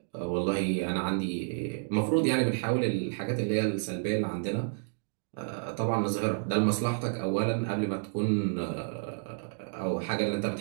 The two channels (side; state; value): left; silent; digital silence